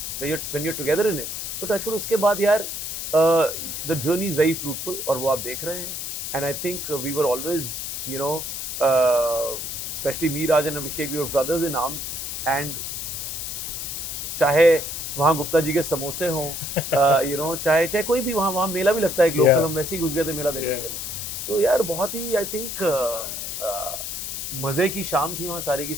when you together in it, तो टचवुड उसके बाद यार the journey is very fruitful, और वो आप देख रहे हैं. And I think we were always, you know, specially me, Raj and Abhishek, we were brothers in arms. And चाहे वहाँ गुप्ता जी के समोसे हों, यू नो, चाहे कोई भी, वहाँ मेला भी लगता है एक लोकल, Yeah. हम वैसे ही घुस गए थे मेला देखने के लिए. सो यार बहुत ही आई थिंक मज़े की शाम थी वहाँ सारी की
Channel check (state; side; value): noise; left; hiss, 5 dB below the sound